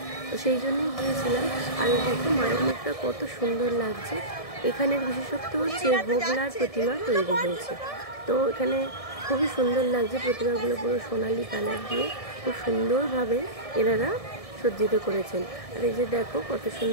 তো সেই জন্যই গিয়েছিলাম। আর দেখো মায়ের মুখটা কত সুন্দর লাগছে। এখানের বিশেষত্ব হচ্ছে হোগলার প্রতিমা তৈরি হয়েছে। তো এখানে খুবই সুন্দর লাগছে, প্রতিমাগুলো পুরো সোনালি কালার দিয়ে খুব সুন্দরভাবে এনারা সজ্জিত করেছেন। আর এই যে দেখো কত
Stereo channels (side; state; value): right; late; 1.6 ms